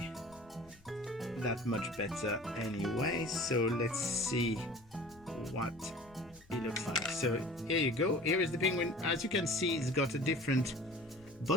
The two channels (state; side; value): noise; left; rumble, 26 dB below the sound